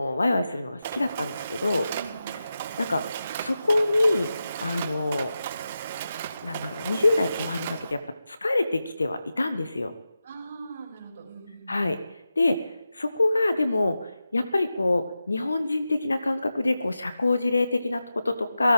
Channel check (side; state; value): both; inverted; correlation -0.91